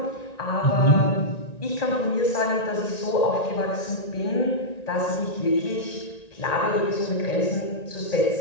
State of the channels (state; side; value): late; right; 1.9 ms